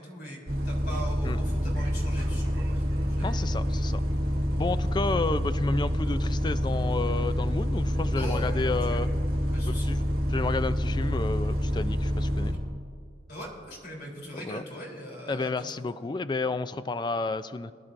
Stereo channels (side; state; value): both; normal; correlation 0.84